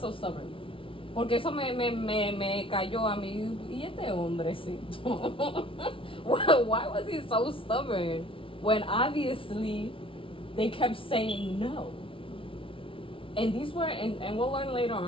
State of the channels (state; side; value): late; right; 0.25 ms